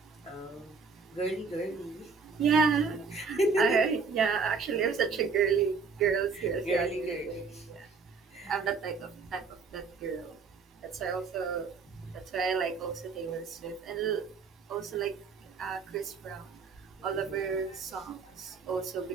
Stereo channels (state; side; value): quieter; left; 4.9 dB